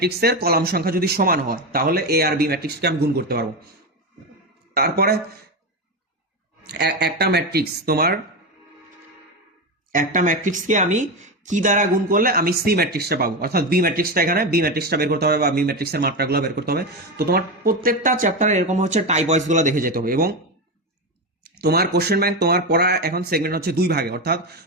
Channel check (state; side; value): normal; both; correlation 0.15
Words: কলাম সংখ্যা যদি সমান হয় তাহলে এ আর বি ম্যাট্রিক্সকে আমি গুণ করতে পারবো। তারপরে একটা ম্যাট্রিক্স তোমার একটা ম্যাট্রিক্সকে আমি কি দ্বারা গুণ করলে আমি সি ম্যাট্রিক্সটা পাবো, অর্থাৎ বি ম্যাট্রিক্সটা এখানে বি ম্যাট্রিক্সটা বের করতে হবে বা বি ম্যাট্রিক্সের মাত্রাগুলো বের করতে হবে। তো তোমার প্রত্যেকটা চ্যাপ্টারে এরকম হচ্ছে টাইপ ওয়াইজ গুলো দেখে যেতে হবে। এবং তোমার কোশ্চেন ব্যাংক তোমার পড়া এখন সেগমেন্ট হচ্ছে 2 ভাগে, অর্থাৎ